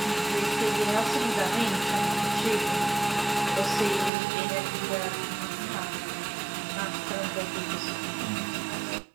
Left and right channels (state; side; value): drops out; left; at 4.1 s